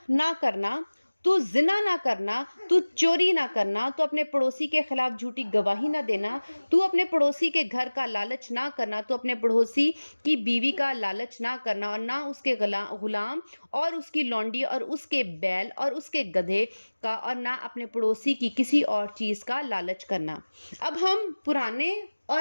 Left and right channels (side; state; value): both; inverted; correlation -1.00